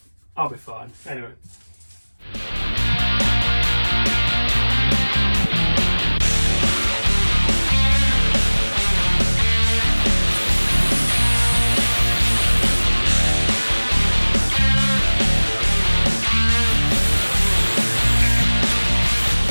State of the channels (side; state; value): both; inverted; correlation -1.00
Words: be fine. Anyway.